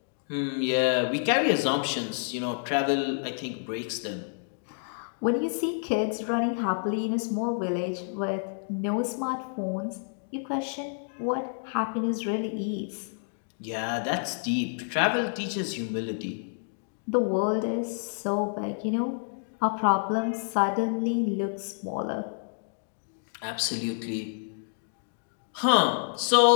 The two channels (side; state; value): right; silent; digital silence